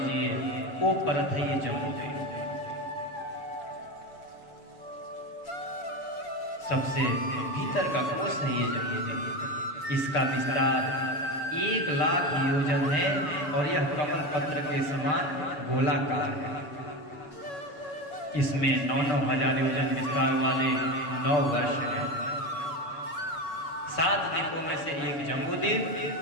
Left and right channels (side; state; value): right; late; 7.1 ms